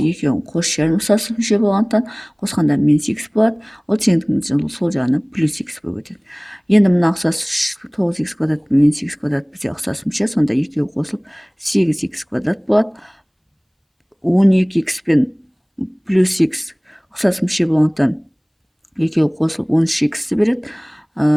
екеуін қос шерін ұқсас мүше болғандықтан қосқанда минус x болады. Ол теңдіктің сол жағына плюс x болып өтеді. Енді мына ұқсас 9x квадрат пен минус x квадрат бізде ұқсас мүше, сонда екеуі қосылып 8x квадрат болады. 12x пен плюс x ұқсас мүше болғандықтан екеуі қосылып 13x-ті береді.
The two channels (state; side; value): identical; both; correlation 1.00